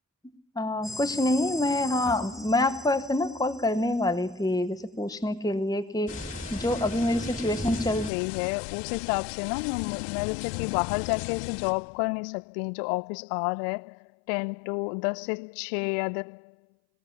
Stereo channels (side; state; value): right; drops out; at 8.1 s